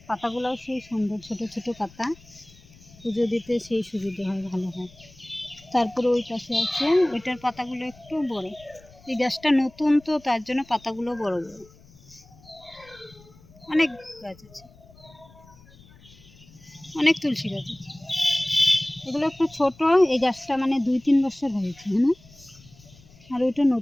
পাতাগুলোও সেই সুন্দর, ছোট ছোট পাতা, পুজো দিতে সেই সুবিধে হয়, ভালো হয়। তারপরে ওই পাশে আছে, ওইটার পাতাগুলো একটু বড়। এই গাছটা নতুন তো, তার জন্য পাতাগুলো বড় বড়। অনেক গাছ আছে, অনেক তুলসী গাছ আছে। এগুলো একটু ছোট, এই গাছটা মানে 2-3 বছর হয়েছে, হ্যাঁ, আর ওইটা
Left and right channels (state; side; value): noise; left; rumble, 25 dB below the sound